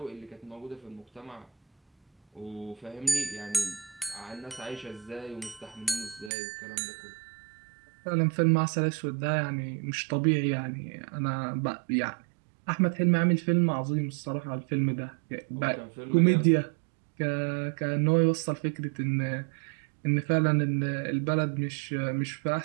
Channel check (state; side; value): drops out; left; at 6.3 s